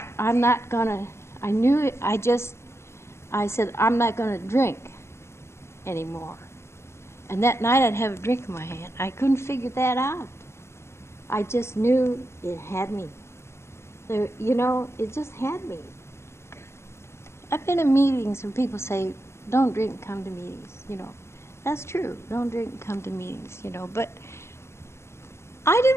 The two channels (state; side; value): late; right; 0.13 ms